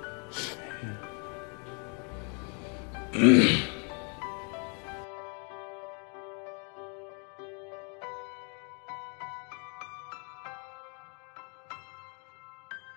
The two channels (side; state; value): right; quieter; 36.9 dB